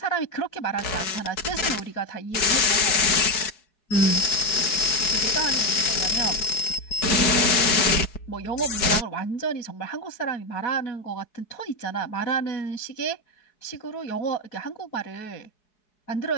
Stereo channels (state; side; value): late; right; 4.7 ms